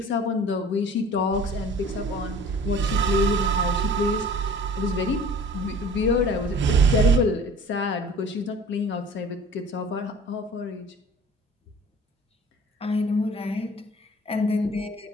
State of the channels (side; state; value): both; normal; correlation 0.46